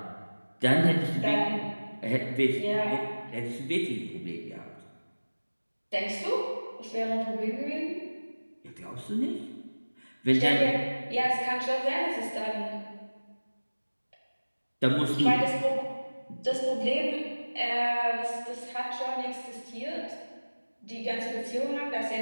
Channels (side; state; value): both; inverted; correlation -1.00